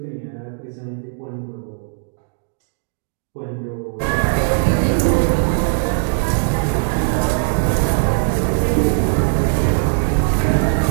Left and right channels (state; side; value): silent; left; 66 dB below the other